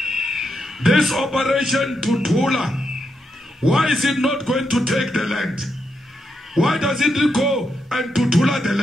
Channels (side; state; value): both; normal; correlation 0.83